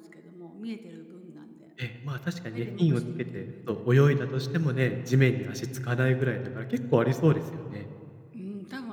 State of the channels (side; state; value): both; identical; correlation 1.00